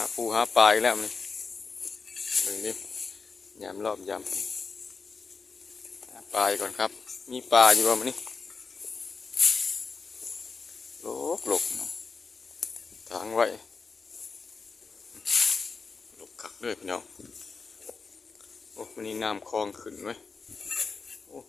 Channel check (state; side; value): quieter; right; 4.8 dB